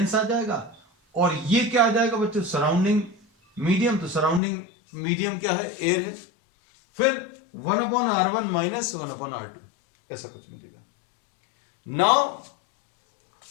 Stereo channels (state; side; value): drops out; right; at 4.4 s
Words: आ जाएगा और ये क्या आ जाएगा बच्चों? Surrounding medium. तो सराउंडिंग मीडियम क्या है? एयर है. फिर 1/R1 -1/R2 ऐसा कुछ मिलेगा. Now